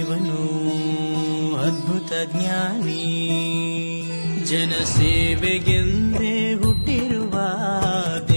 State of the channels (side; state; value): both; inverted; correlation -1.00